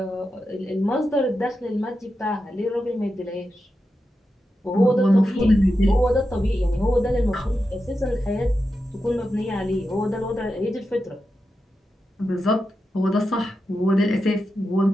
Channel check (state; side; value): normal; both; correlation 0.89